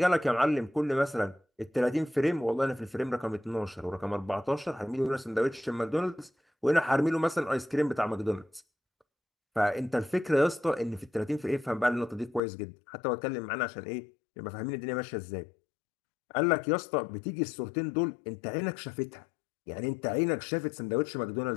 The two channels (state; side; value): drops out; right; at 12.4 s